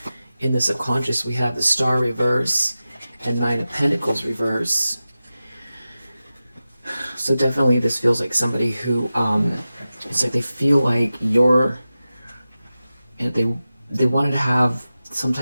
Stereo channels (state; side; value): inverted; both; correlation -0.94